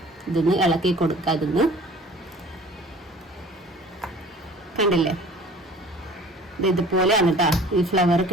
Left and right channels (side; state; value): both; normal; correlation 0.47